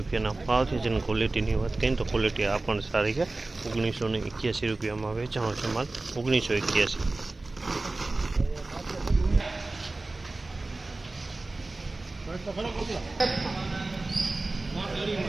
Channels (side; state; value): left; quieter; 3.1 dB